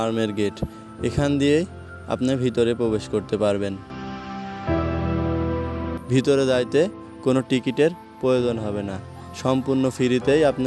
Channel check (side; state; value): both; identical; correlation 1.00